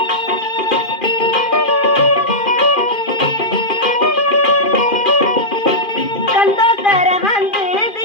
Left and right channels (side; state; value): right; late; 2.4 ms